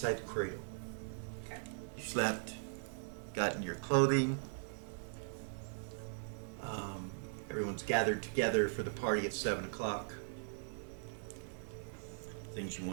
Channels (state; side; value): silent; left; digital silence